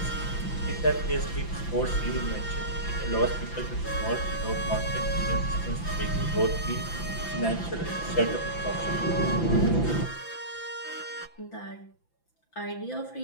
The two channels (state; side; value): late; right; 5.9 ms